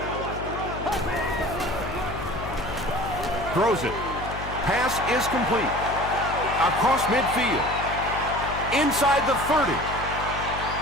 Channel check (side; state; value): left; noise; hum, 9 dB below the sound